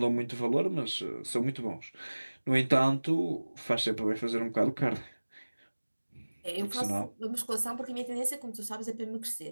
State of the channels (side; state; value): both; inverted; correlation -1.00